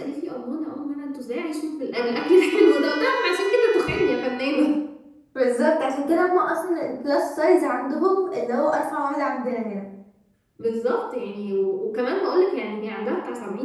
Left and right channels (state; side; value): identical; both; correlation 1.00